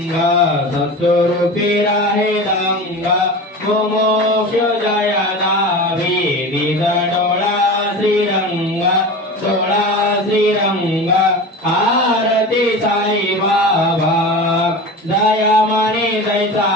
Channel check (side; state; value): both; normal; correlation 0.31